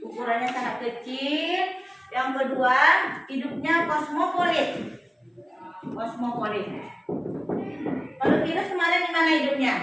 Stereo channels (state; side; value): identical; both; correlation 1.00